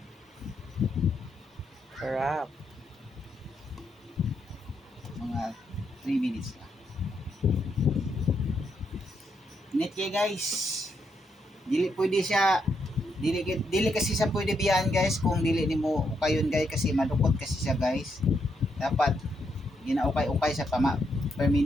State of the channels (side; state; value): both; normal; correlation 0.79